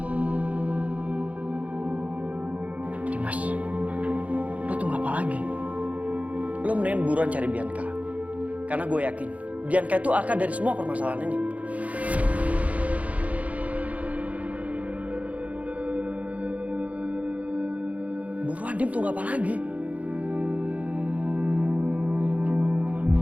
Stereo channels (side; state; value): left; late; 0.068 ms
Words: Dimas, lo tunggu apa lagi? Lo mendingan buruan cari Bianca. Karena gue yakin Bianca itu akar dari semua permasalahan ini. Buruan, Dim, tunggu apa lagi?